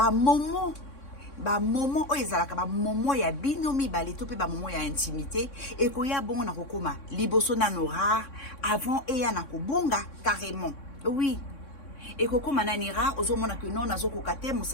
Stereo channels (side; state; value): right; late; 3.6 ms